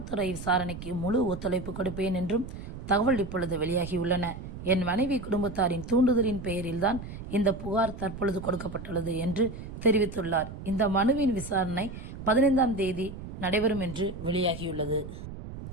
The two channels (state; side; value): noise; right; rumble, 10 dB below the sound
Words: விசாரணைக்கு முழு ஒத்துழைப்பு கொடுப்பேன் என்றும் தகவல் இப்பொழுது வெளியாகியுள்ளன. என் மனைவி குடும்பத்தாரின் தூண்டுதலின் பெயரில்தான் இந்த புகார் தற்பொழுது கொடுக்கப்பட்டுள்ளது என்று தெரிவித்துள்ளார். இந்த மனுவின் விசாரணை 15ஆம் தேதி நடைபெறும் என்று வெளியாகியுள்ளது.